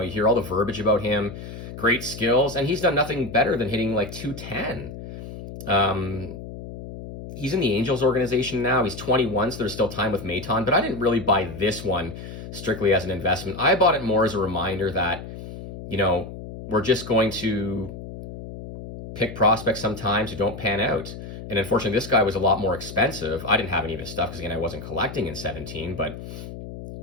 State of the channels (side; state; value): left; noise; hum, 11 dB below the sound